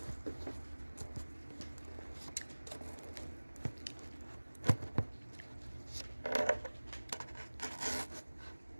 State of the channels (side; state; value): both; inverted; correlation -1.00